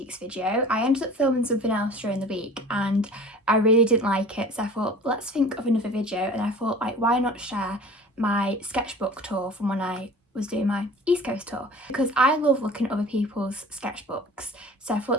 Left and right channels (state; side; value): normal; both; correlation 0.42